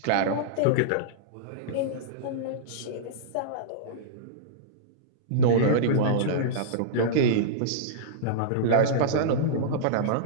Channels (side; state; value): both; different; correlation -0.04